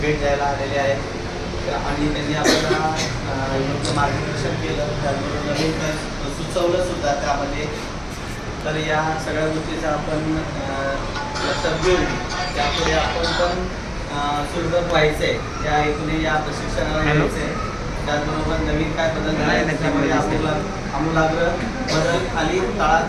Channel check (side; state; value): both; identical; correlation 1.00